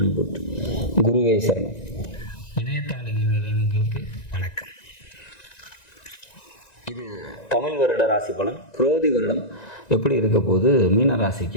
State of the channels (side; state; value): right; late; 1.9 ms